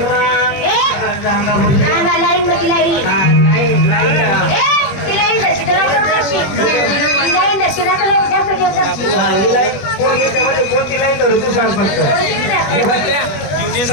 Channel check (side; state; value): right; late; 21 ms